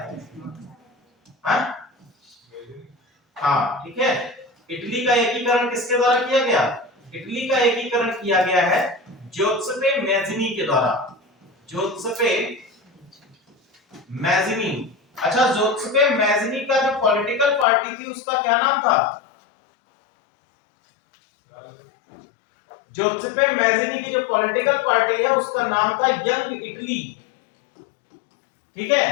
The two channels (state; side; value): drops out; right; at 17.7 s